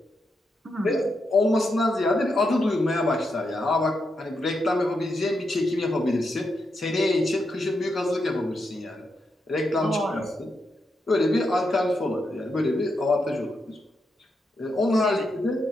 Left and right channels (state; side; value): normal; both; correlation 0.84